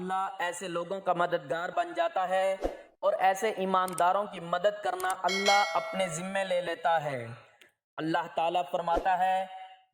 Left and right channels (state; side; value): identical; both; correlation 1.00